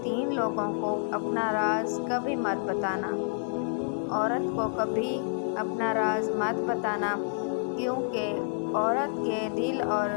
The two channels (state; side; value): silent; right; digital silence